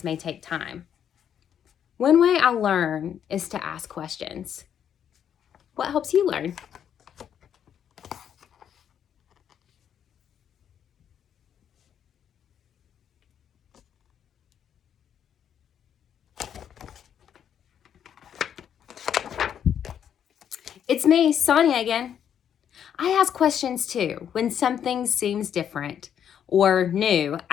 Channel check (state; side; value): quieter; right; 8.9 dB